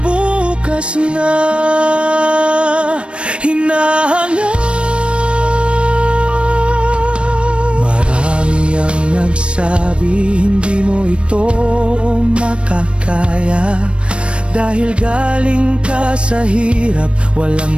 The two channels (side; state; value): left; late; 0.059 ms